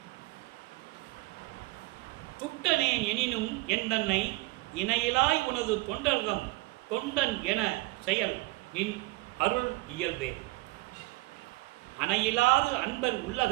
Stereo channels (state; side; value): quieter; left; 22.5 dB